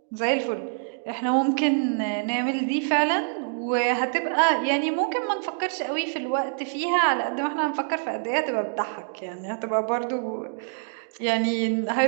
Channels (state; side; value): silent; left; digital silence